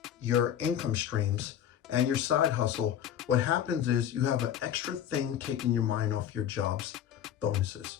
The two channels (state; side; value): quieter; right; 10.1 dB